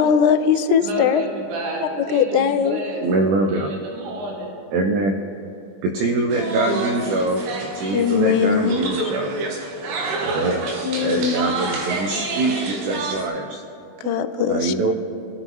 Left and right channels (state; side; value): late; left; 20 ms